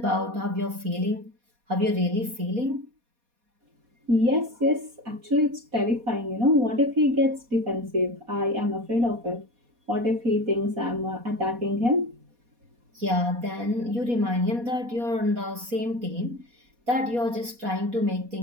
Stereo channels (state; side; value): late; left; 4.2 ms